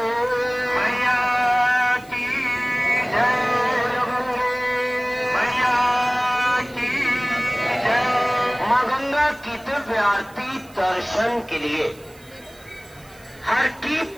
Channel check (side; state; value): right; noise; hiss, 25 dB below the sound